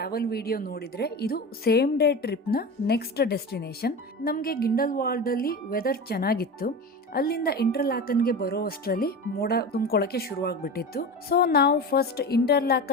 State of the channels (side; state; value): both; normal; correlation 0.27